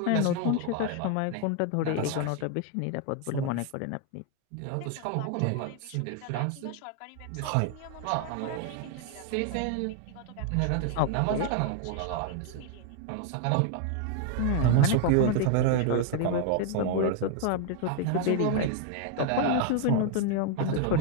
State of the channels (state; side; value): different; both; correlation 0.00